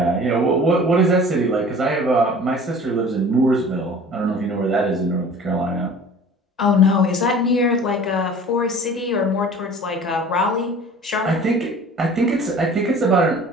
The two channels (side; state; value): both; normal; correlation 0.44